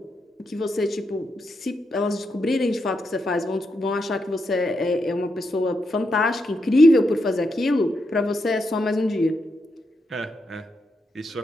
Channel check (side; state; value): both; normal; correlation 0.83